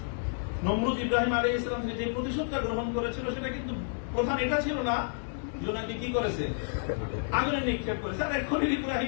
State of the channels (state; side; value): silent; right; digital silence